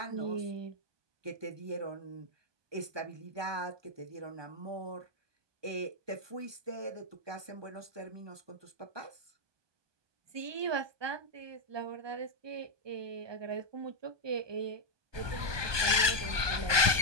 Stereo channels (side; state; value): left; late; 1.2 ms